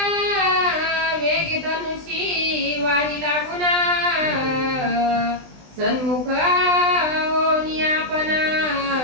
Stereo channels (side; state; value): left; late; 20 ms